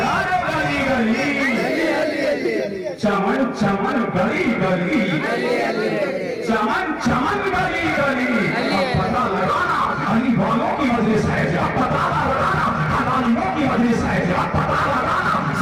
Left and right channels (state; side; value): identical; both; correlation 1.00